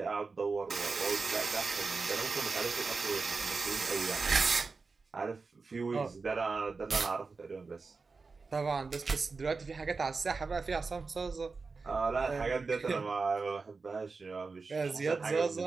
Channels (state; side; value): quieter; left; 4.3 dB